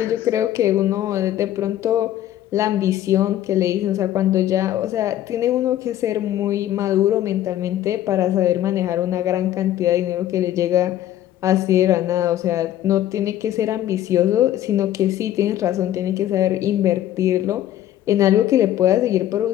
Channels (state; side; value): quieter; right; 12.5 dB